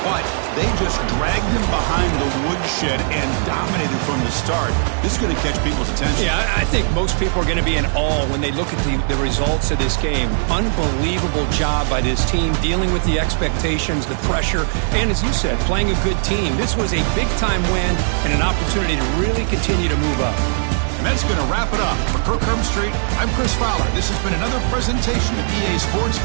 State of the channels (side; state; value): left; silent; digital silence